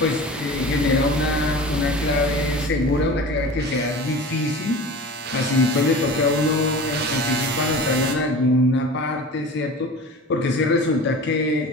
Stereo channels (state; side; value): normal; both; correlation 0.36